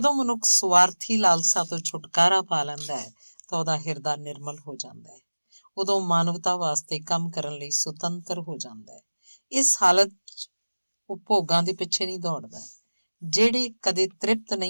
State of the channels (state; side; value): inverted; both; correlation -1.00